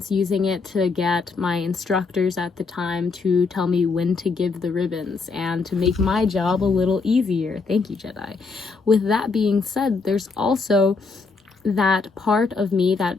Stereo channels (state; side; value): quieter; right; 4.4 dB